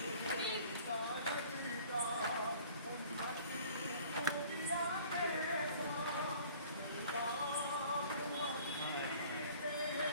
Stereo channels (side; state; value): both; inverted; correlation -0.50